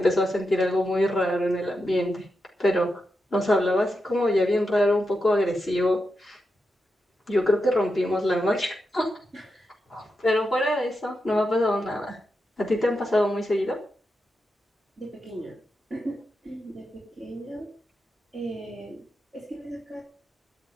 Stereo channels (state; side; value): normal; both; correlation 0.87